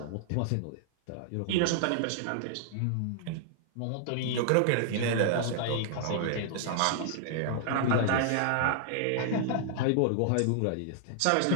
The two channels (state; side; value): different; both; correlation -0.01